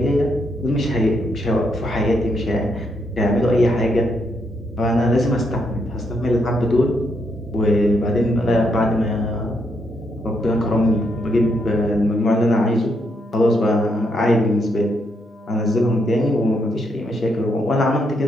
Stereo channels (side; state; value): both; normal; correlation 0.77